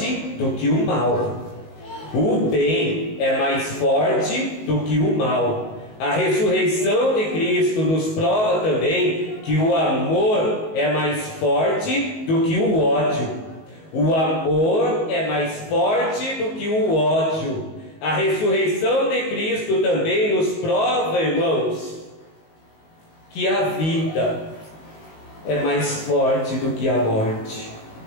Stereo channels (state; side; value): late; right; 19 ms